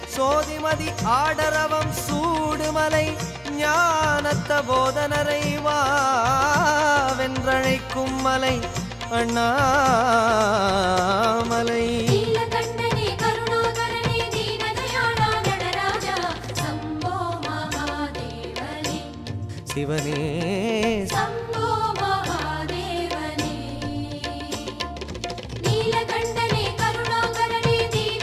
சோதிமதி ஆடரவம் சூடுமலை ஞானத்த போதனரை வாவென்றழைக்கும் மலை அண்ணாமலை. சிவனே சம்போ மகாதேவனே நீலகண்டனே கருணாகரனே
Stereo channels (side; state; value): both; identical; correlation 1.00